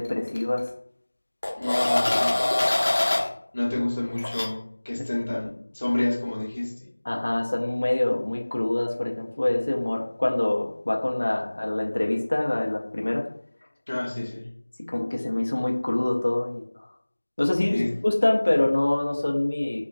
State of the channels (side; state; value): both; inverted; correlation -1.00